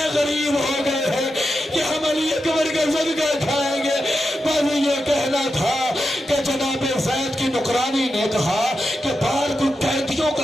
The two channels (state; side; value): normal; both; correlation 0.89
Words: غریب ہو گئے ہیں کہ ہم علی اکبر کا صدقہ کھائیں گے۔ بس یہ کہنا تھا کہ جناب زید کی نکرانی نے کہا کہ بار کو قیدیوں